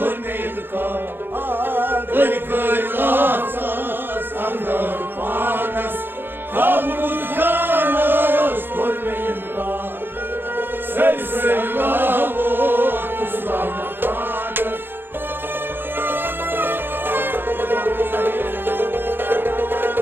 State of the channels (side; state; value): left; late; 0.10 ms